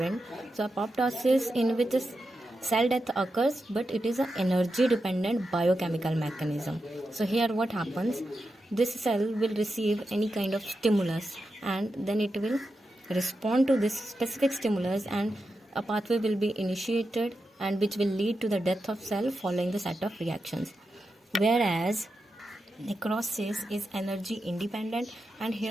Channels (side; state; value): both; normal; correlation 0.89